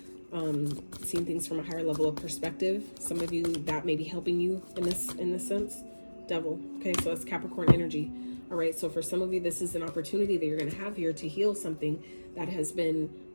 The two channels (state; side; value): inverted; both; correlation -1.00